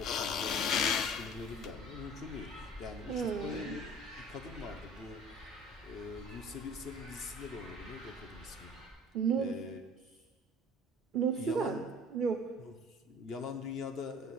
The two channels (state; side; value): normal; both; correlation 0.46